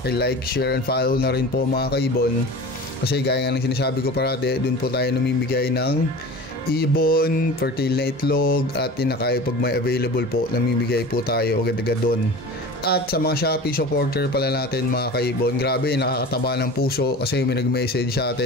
share, and follow na rin po mga kaibon. Kasi gaya nga ng sinasabi ko parati, dun po tayo namimigay ng ibon, fertile na itlog, at tinakayo pag may available po, namimigay po tayo agad-agad doon. At sa mga Shopee supporter pala natin mga kaibon, grabe nakakataba ng puso kasi may nag-message sa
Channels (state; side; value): normal; both; correlation 0.36